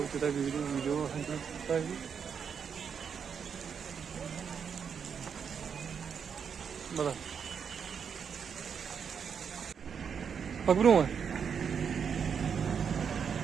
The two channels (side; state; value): left; quieter; 6.9 dB